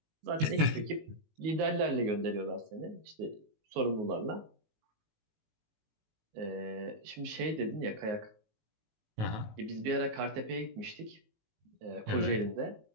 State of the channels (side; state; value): left; late; 19 ms